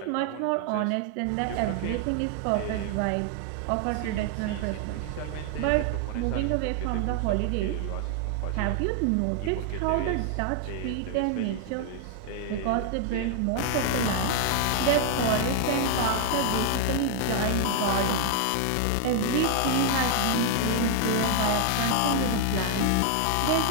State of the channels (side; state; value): both; different; correlation 0.00